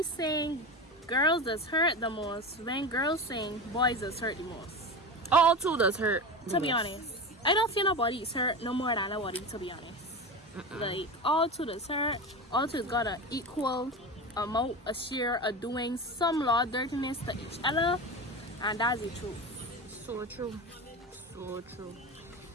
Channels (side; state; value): both; normal; correlation 0.25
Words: saying girls does hurt the most when girls saying boys does hurt the most. All two does hurt. To be honest, I don't feel nobody's hurt no more than nobody, to be honest. Like, all two does hurt. All two got an equal amount, a share of doing some law dirtiness to each other, and that's the truth. So true. So true.